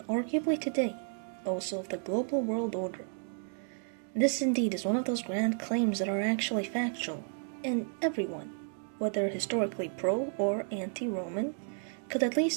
arguably today, also of the global world order. This indeed is one of those grand claims that are actually factual, and everyone, whether historically pro or anti-Roman, could at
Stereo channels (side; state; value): left; silent; 56 dB below the other